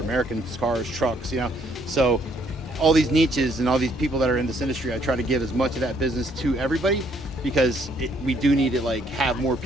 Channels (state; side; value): normal; both; correlation 0.67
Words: American cars, trucks, you know. So all these niches and all these people that are in this industry, I try to give as much of that business to everybody because we do need to like have more